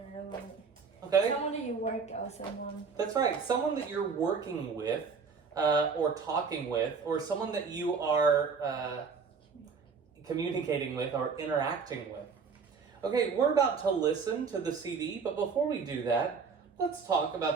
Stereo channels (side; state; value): left; quieter; 5.4 dB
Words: like Okay. someone that you work with, someone. That's right. Someone that you're working with, or talking with, or someone that you are communicating with or interacting with. Okay, we're about to listen to the CD, but before we do that, let's talk about